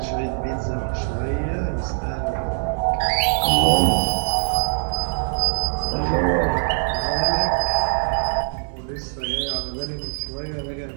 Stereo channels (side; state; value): left; silent; 58 dB below the other